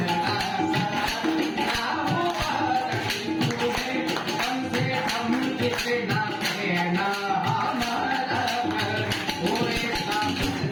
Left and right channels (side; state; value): both; identical; correlation 1.00